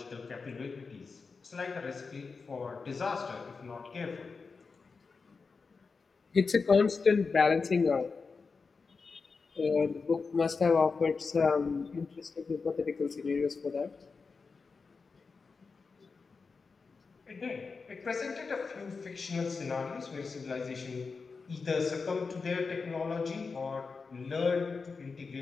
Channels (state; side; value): quieter; right; 4.7 dB